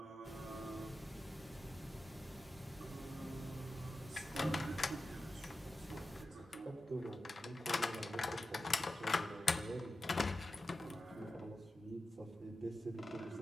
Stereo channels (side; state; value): both; normal; correlation 0.93